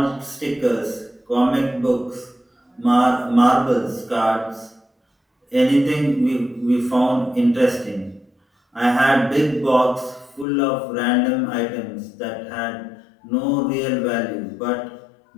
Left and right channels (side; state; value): right; drops out; at 10.5 s